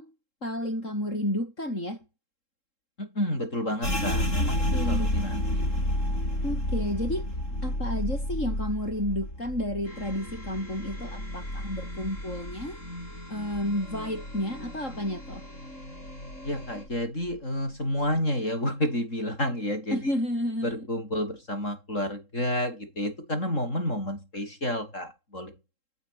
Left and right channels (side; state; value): right; late; 3.7 ms